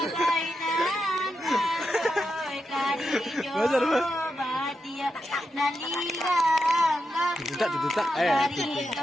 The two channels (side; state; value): both; normal; correlation 0.86